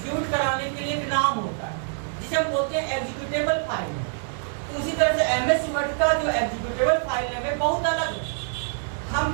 कराने के लिए एक नाम होता है जिसे हम बोलते हैं एग्जीक्यूटेबल फाइल नेम। तो उसी तरह से एमएस वर्ड का जो एग्जीक्यूटेबल फाइल नेम है बहुत अलग है। हम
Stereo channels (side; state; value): left; silent; 61 dB below the other